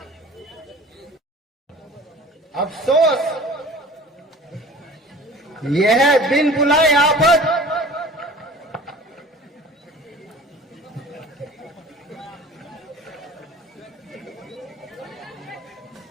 अफसोस यह है बिन बुलाए आफत।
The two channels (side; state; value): both; normal; correlation 0.44